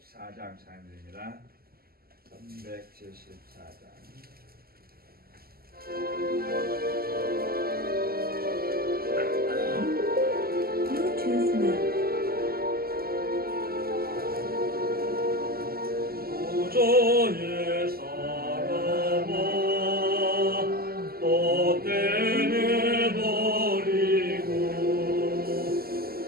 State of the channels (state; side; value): late; left; 0.44 ms